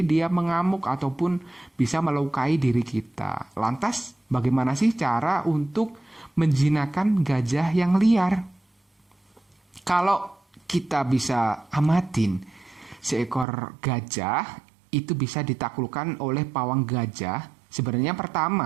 dia mengamuk ataupun bisa melukai diri kita. Lantas, bagaimana sih cara untuk menjinakkan gajah yang liar? Kalau kita bisa amatin, seekor gajah itu bisa ditaklukkan oleh pawang gajah. Sebenarnya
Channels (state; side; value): drops out; left; at 13.5 s